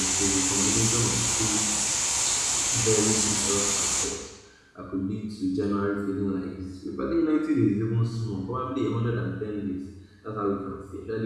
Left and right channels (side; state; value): both; identical; correlation 1.00